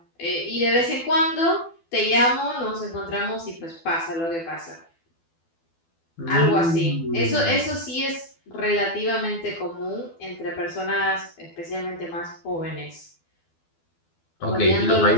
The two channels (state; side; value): late; right; 12 ms